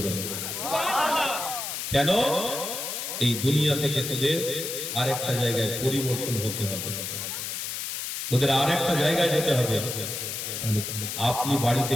দেব। সুবহানাল্লাহ। কেন? এই দুনিয়া থেকে তোদের আরেকটা জায়গায় পরিবর্তন হতে হবে, তোদের আরেকটা জায়গায় যেতে হবে। তাহলে আপনি বাড়িতে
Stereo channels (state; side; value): noise; left; hiss, 5 dB below the sound